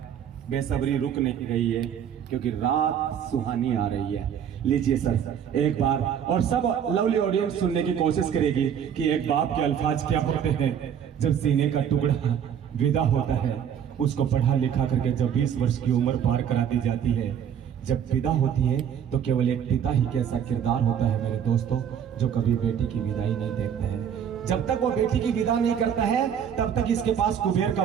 बेसब्री रुक नहीं रही है, क्योंकि रात सुहानी आ रही है। लीजिए सर एक बार, और सब लवली ऑडियंस सुनने की कोशिश करेगी कि एक बाप के अल्फाज क्या होते हैं जब सीने का टुकड़ा विदा होता है, उसको पढ़ा लिखा करके जब 20 वर्ष की उम्र पार करा दी जाती है, जब विदा होती है तो केवल एक पिता ही कैसा किरदार होता है मेरे दोस्तों, जो कभी बेटी की विदाई नहीं देखता है। जब तक वो बेटी की विदा नहीं करता है तब तक इसके पास कुबेर का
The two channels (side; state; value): left; quieter; 8.6 dB